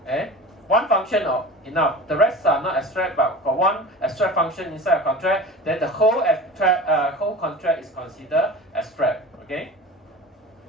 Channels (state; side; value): normal; both; correlation 0.35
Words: one function enough. The rest are not abstract, but for one abstract function inside a contract, then the whole contract is considered abstract. Okay.